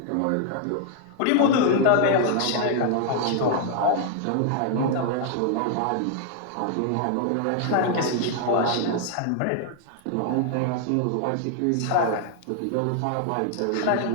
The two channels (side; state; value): both; different; correlation 0.00